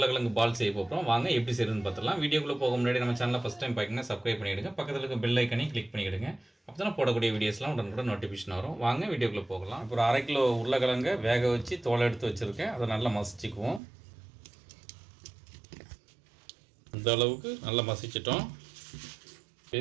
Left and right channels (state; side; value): drops out; left; at 13.8 s